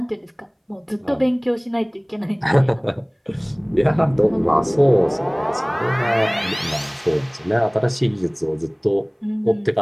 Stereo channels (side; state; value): both; identical; correlation 1.00